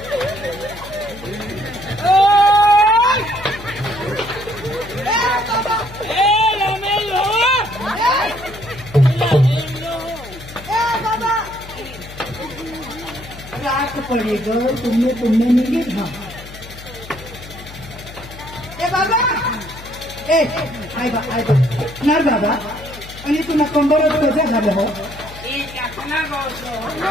रात पडेग तुमने निघेल हा ए बाबा ए आय बा नार बाबा आणि तुला कंबरच कसं झालं हो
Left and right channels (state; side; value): noise; left; hum, 16 dB below the sound